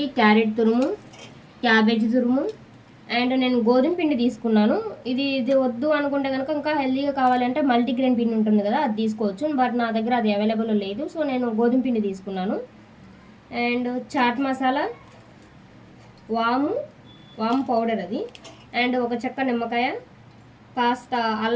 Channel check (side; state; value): both; identical; correlation 1.00